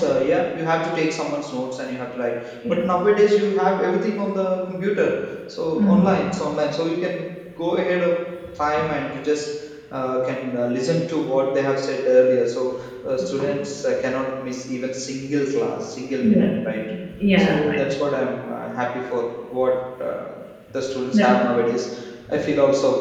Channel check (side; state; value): both; identical; correlation 1.00